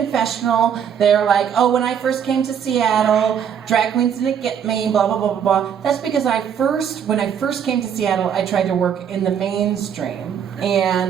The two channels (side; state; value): left; quieter; 8.2 dB